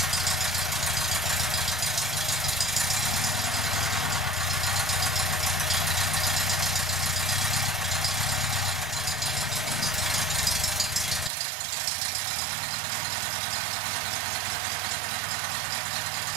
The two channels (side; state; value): left; drops out; at 11.3 s